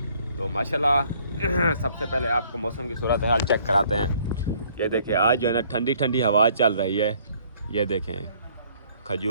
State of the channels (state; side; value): inverted; both; correlation -0.61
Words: तो माशाल्लाह सबसे पहले आपको मौसम की सूरत हाल चेक कराते हैं। ये देखें, आज जो है ना ठंडी ठंडी हवा चल रही है। ये देखें,